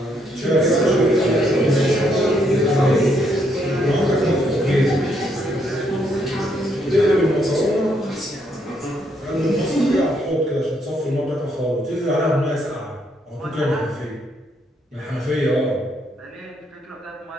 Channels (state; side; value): normal; both; correlation 0.73